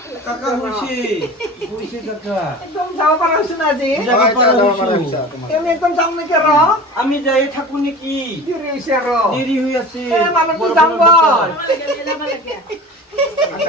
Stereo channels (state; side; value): normal; both; correlation 0.36